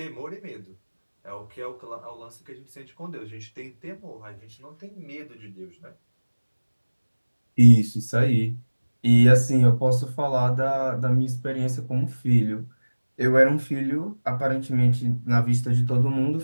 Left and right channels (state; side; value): inverted; both; correlation -1.00